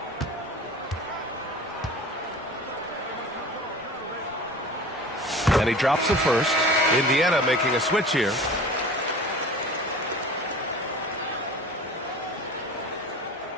And he drops the first. Indiana making a switch here.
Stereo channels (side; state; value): both; normal; correlation 0.39